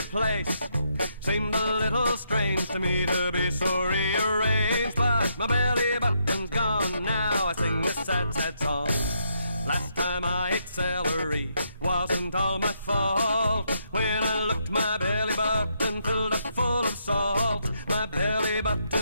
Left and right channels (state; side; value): inverted; both; correlation -0.77